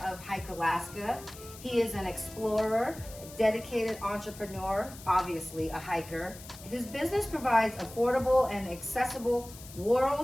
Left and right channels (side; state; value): left; noise; hiss, 17 dB below the sound